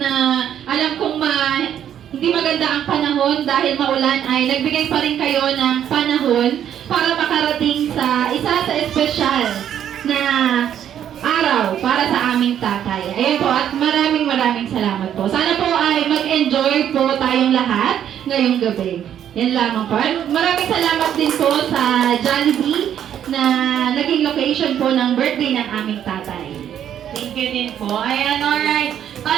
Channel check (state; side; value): quieter; left; 9.9 dB